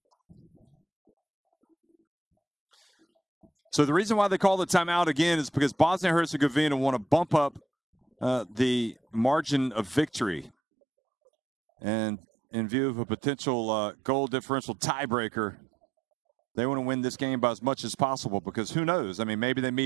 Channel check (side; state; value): left; drops out; at 10.5 s